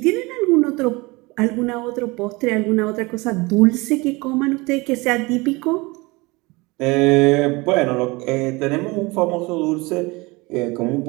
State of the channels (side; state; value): left; quieter; 24.3 dB